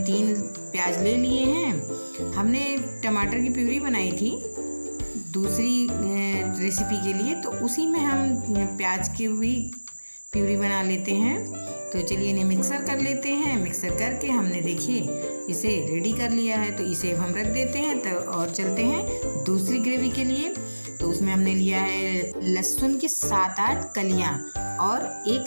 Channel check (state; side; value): inverted; both; correlation -1.00